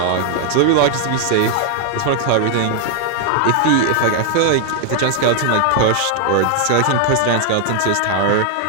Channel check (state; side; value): different; both; correlation 0.00